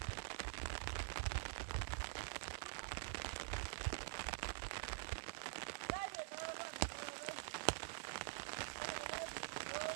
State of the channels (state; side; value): silent; left; digital silence